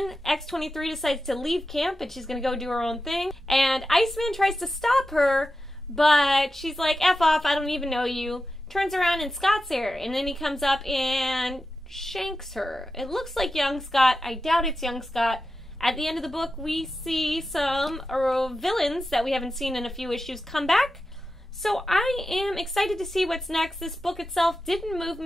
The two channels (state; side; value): normal; both; correlation 0.91